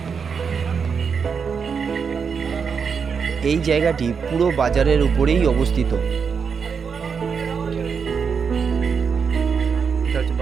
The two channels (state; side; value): quieter; left; 6.1 dB